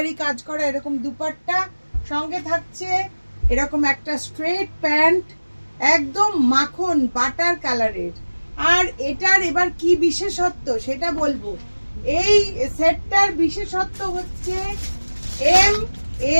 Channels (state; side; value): inverted; both; correlation -1.00